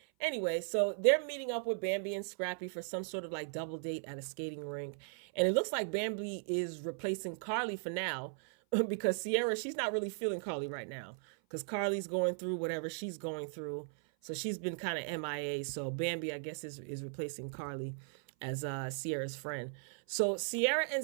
Anyway, so they're meeting up with Bambi and Scrappy for some sort of like double date at a skating rink. And it looks like Bambi is replacing Carly for now because Sierra, she's not really feeling Carly right now because Carly's going through whatever she's going through. So she's been kind of MIA. So Bambi, I guess, is replacing Carly. as Sierra's friend. So Sierra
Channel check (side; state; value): left; silent; 53 dB below the other